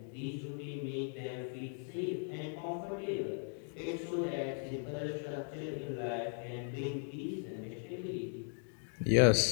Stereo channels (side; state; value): right; silent; 53 dB below the other